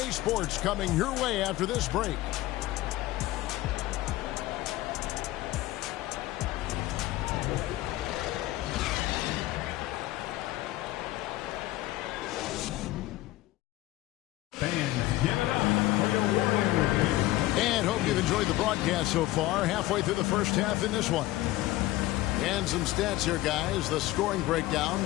Sports coming your way after this break. And hope you've enjoyed the broadcast so far. Halfway through the first half in this one. And some stats here, guys. The scoring breakdown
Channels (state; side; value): quieter; right; 16.9 dB